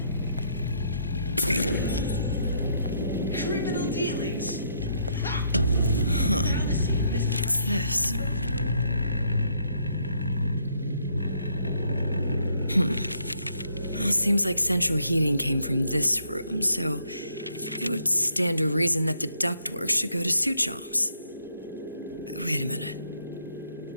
Criminal dealings? What's this? Well, seems like central heating came from this room, so it would stand to reason that the ductwork should go to Suchong's. Wait a minute.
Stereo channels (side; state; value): both; inverted; correlation -0.71